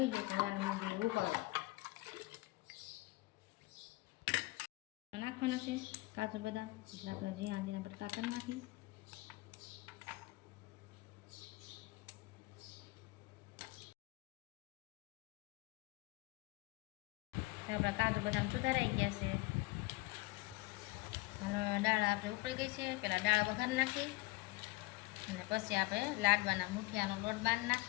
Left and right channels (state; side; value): quieter; right; 22.2 dB